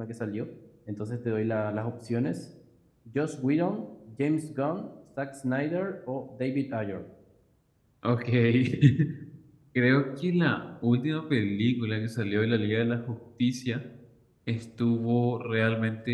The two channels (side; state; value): both; identical; correlation 1.00